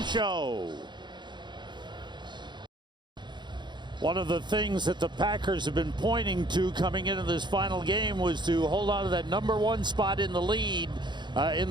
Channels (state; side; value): late; left; 0.22 ms